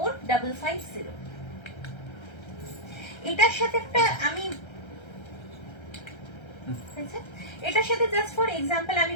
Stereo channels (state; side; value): late; right; 1.3 ms